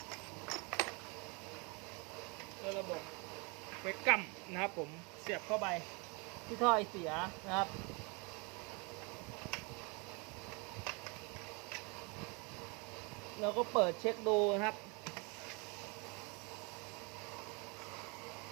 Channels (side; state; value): left; quieter; 30.9 dB